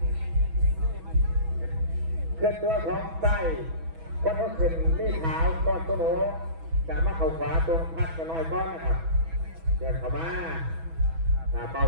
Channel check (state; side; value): late; left; 6.1 ms